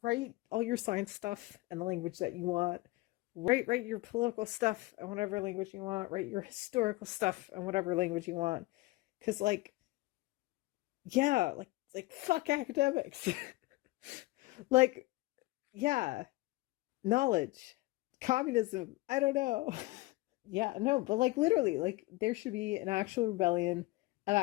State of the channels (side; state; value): right; quieter; 20.6 dB